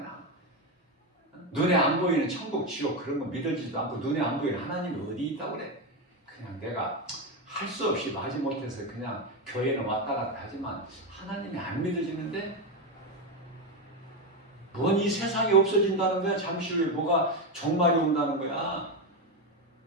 눈에 안 보이는 천국, 지옥 그런 거 믿어지지도 않고 눈에 안 보이는 하나님이 어디 있다고 그래. 그냥 내가 할 수 없이 마지못해서 그냥 교회는 왔다 갔다 하지만 하나님이 안 믿어지는데 뭔 이 세상이 없어진다는 거야. 잠시 후에 뭐가 종말이 온다는 거야.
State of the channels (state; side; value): normal; both; correlation 0.11